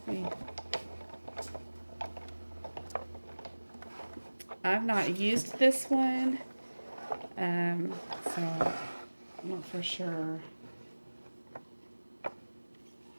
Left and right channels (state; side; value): inverted; both; correlation -1.00